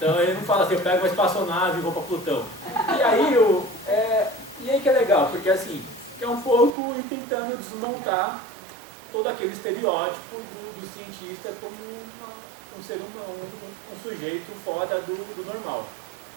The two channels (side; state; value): left; drops out; at 6.8 s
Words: ele não fala assim, eu pego uma espaçonave e vou para Plutão. E aí que é legal, porque assim, é um pouco ir tentando desmontar todo aquele estereótipo do cientista como um ser humano, um sujeito fora do normal.